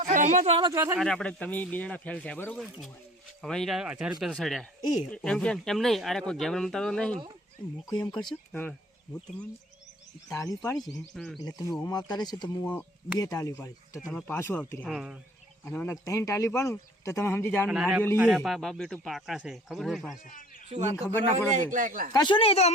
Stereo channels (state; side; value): normal; both; correlation 0.50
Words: સહમાં તો હાલો ચોથા અરે આપણે તમે બે જણા ફેલ થયા બરોબર હવે ઈ 1000 રૂપિયા તો સડ્યા એ એમ કેમ એમ નહીં અરે કોઈ ગેમ રમતા તો નહીં મૂકો એમ કરશો હા હું તમને તાળી પાડી છે એટલે તમે ઓમ આવતા રહેશો તો હું 2 તાળી પાડીશ તો તમે પાછું આવતી રહ્યા હા અને મને 3 તાળી પાડું તો તમે સમજી જાવ અને નારિયેળ અરે લઈએ બાપ બેટું પાકા છે ખબર ઓય છે પાસે શું એને વાત ખબર ના કરો? પડે એકલા એકલા કશું નહીં એ તો